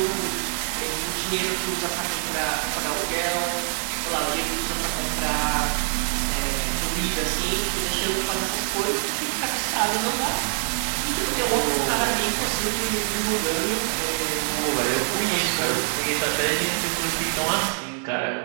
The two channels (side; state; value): left; silent; 62 dB below the other